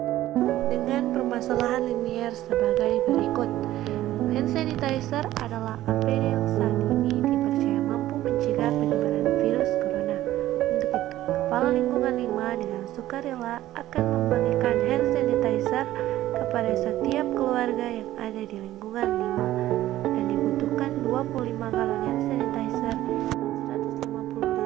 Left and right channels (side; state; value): left; quieter; 14.5 dB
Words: Dengan permasalahan linier sebagai berikut. Hand sanitizer adalah APD yang saat ini dipercaya mampu mencegah penyebaran virus corona. Untuk itu, Kepala Lingkungan 5 dengan sukarela akan membagikan hand sanitizer kepada setiap keluarga yang ada di lingkungan 5 dan dibutuhkan 25 galon hand sanitizer dan 150